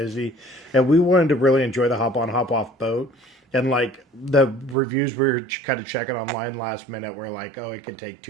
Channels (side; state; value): left; drops out; at 4.8 s